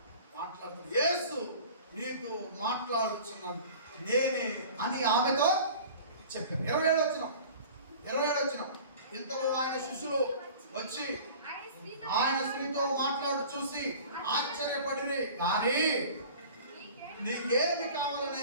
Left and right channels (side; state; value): both; inverted; correlation -0.42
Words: మాట్లాడుతున్నాడు. యేసు నీతో మాట్లాడుతున్నాడు నేనే అని ఆమెతో చెప్పారు. 27 వచనం. ఇంతలో ఆయన శిష్యులు వచ్చి ఆయన స్త్రీతో మాట్లాడు చూసి ఆశ్చర్యపడిరి, కానీ నీకేమి కావాలని